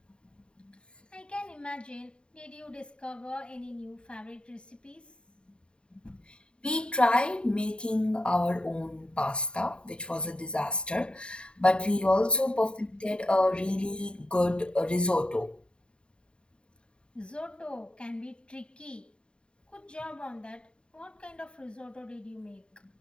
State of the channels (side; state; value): right; late; 0.052 ms